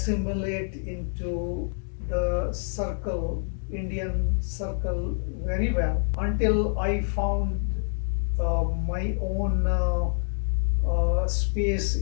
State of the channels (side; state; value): right; silent; 60 dB below the other